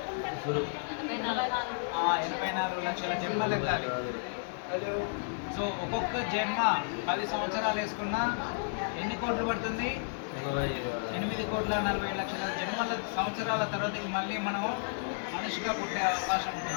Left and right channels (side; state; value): right; silent; digital silence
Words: 84 లక్షల జన్మలెత్తాలి. సో ఒక్కొక్క జన్మ 10 సంవత్సరాలు వేసుకున్నా ఎన్ని కోట్లు పడుతుంది, 8,40,00,000 సంవత్సరాల తర్వాతకి మళ్ళీ మనం మనిషిగా పుట్టే అవకాశం